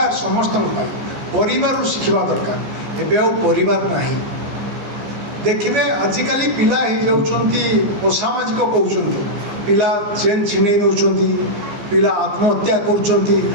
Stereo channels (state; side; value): late; left; 14 ms